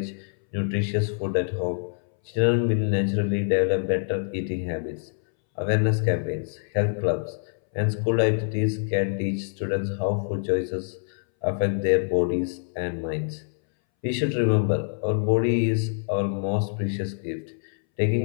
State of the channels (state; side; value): silent; right; 61 dB below the other